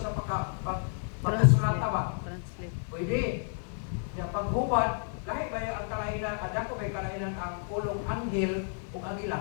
sa pagkasulata ba? Translate. Pwede. Yung paghubad, lahi ba ang kalainan, adako ba yung kalainan ang pulong anghel o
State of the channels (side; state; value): right; silent; 57 dB below the other